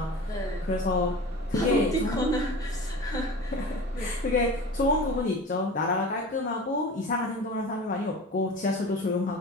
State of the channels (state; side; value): normal; both; correlation 0.35